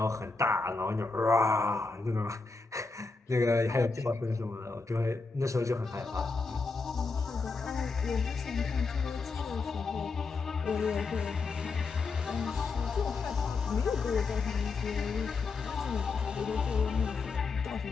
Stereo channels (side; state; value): right; quieter; 4.2 dB